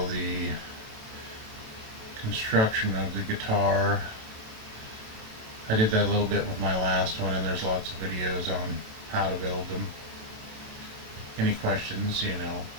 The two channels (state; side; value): late; left; 27 ms